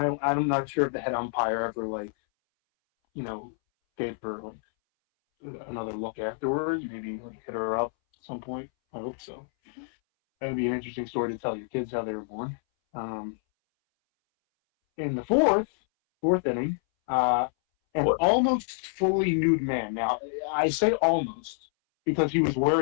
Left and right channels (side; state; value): right; silent; 60 dB below the other